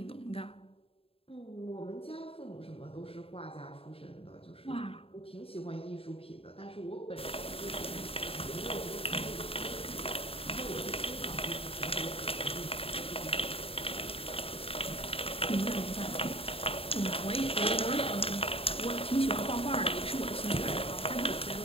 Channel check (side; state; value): right; late; 0.27 ms